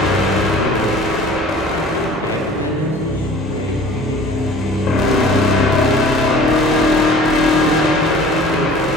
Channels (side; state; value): both; normal; correlation 0.46